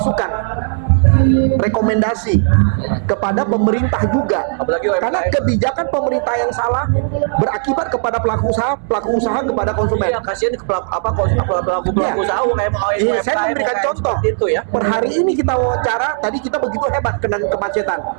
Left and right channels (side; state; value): left; silent; digital silence